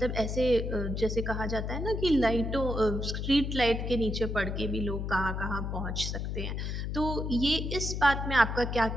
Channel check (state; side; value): noise; left; hum, 3 dB below the sound